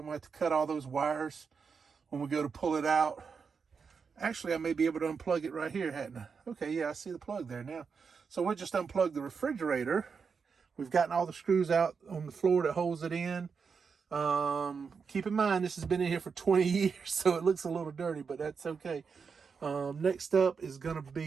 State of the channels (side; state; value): left; quieter; 5.7 dB